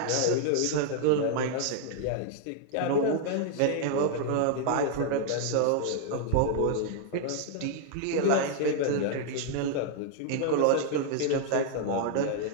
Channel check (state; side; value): different; both; correlation 0.00